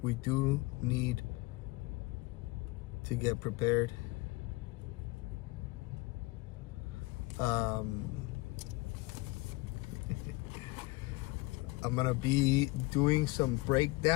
We do need to get prepared. I'm gonna be doing some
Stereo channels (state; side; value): quieter; right; 22.2 dB